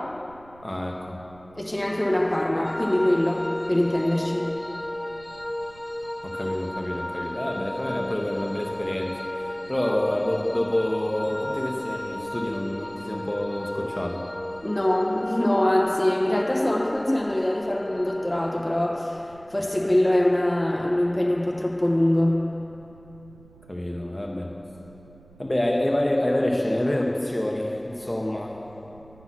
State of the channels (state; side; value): noise; right; rumble, 24 dB below the sound